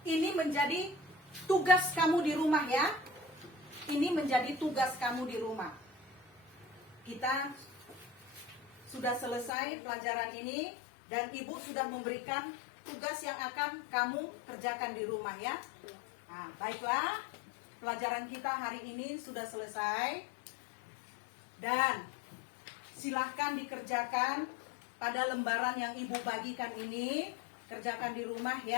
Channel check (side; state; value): right; drops out; at 9.5 s